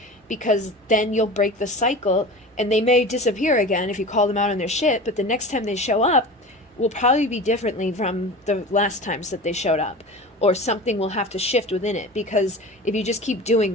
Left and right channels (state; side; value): normal; both; correlation 0.34